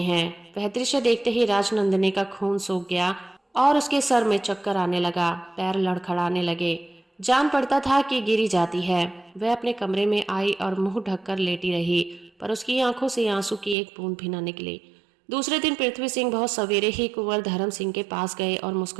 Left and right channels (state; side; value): drops out; left; at 13.8 s